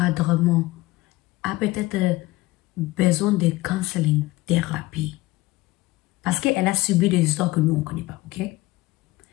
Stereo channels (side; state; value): right; quieter; 19.5 dB